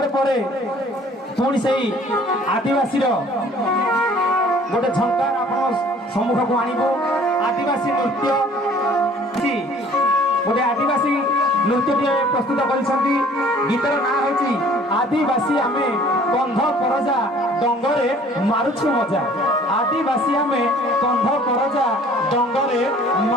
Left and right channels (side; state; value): both; normal; correlation 0.53